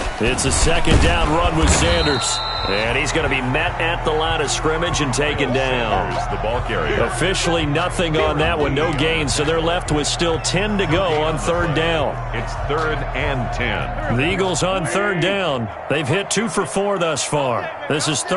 It's a 2nd down run with Sanders. And he's going to be met at the line of scrimmage and taken down. There's the ball carrier. Officially nothing on that one, no gain, so they're left with still 10 to go on 3rd down. It's 3rd and 10. The Eagles on 3rd down. They've hit 2 for 4 thus far. This is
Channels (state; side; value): identical; both; correlation 1.00